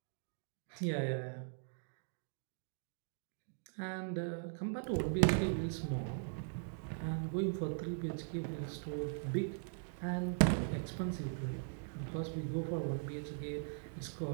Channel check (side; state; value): left; silent; digital silence